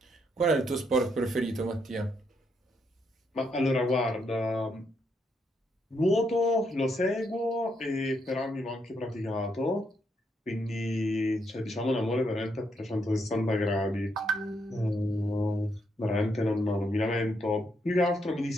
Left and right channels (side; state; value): both; normal; correlation 0.77